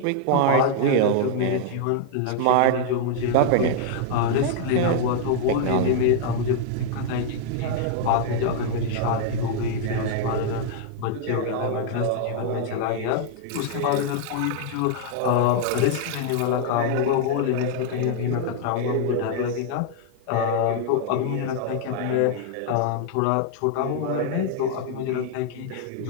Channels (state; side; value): different; both; correlation 0.00